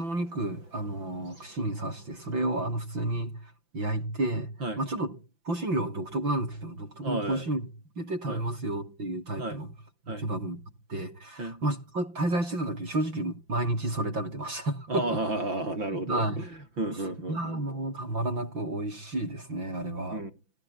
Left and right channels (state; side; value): late; left; 5.9 ms